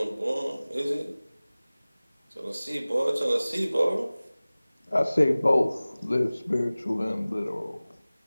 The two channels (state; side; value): inverted; both; correlation -0.99